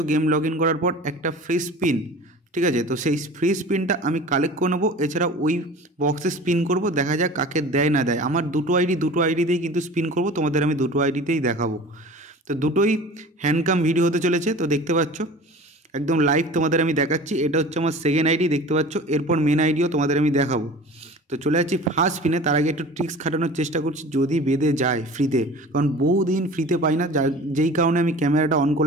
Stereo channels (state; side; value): normal; both; correlation 0.40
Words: গেম লগ ইন করার পর একটা ফ্রি স্পিন। ঠিক আছে, তো সেই ফ্রি স্পিনটা আমি কালেক্ট করে নেবো। এছাড়া ওই বক্সে স্পিন করব, দেখা যাক কাকে দেয় না দেয়। আমার দুটো আইডিতেই কিন্তু স্পিন করব, তোমাদের আমি দুটো আইডিতেই দেখাবো। তো দুটোই হ্যান্ডকাম ভিডিও হতে চলেছে। তো দেখতে পাচ্ছ একদম লাইভ তোমাদের আমি দেখাচ্ছি। এটা হচ্ছে আমার সেকেন্ড আইডি, দেখতে পাচ্ছ। এরপর মেন আইডিও তোমাদের আমি দেখাবো। তো চলে যাচ্ছি ফার্স্ট স্পিনে। তার আগে একটু ট্রিক্স খাটানোর চেষ্টা করছি, যদি বেঁধে যায় ফ্রিতে, কারণ বহুদিন ফ্রিতে পাই না, যেই কারণে আমি ক্যামেরাটা অন